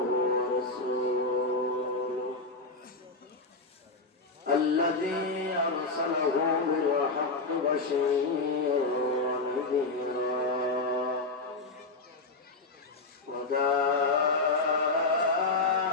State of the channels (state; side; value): quieter; right; 3.5 dB